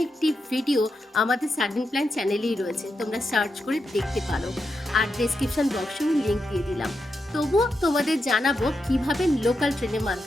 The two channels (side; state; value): both; normal; correlation 0.86